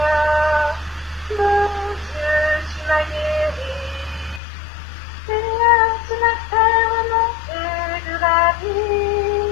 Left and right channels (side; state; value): right; drops out; at 4.4 s